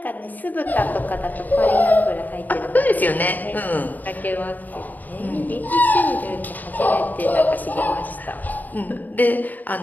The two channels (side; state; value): right; late; 0.084 ms